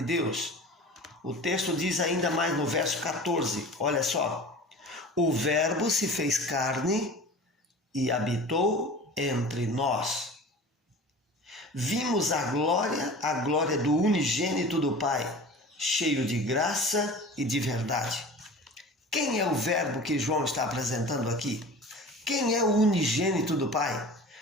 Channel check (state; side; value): normal; both; correlation 0.38